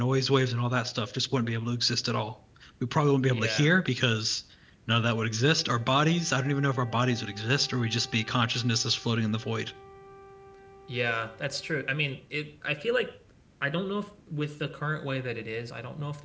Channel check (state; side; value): identical; both; correlation 1.00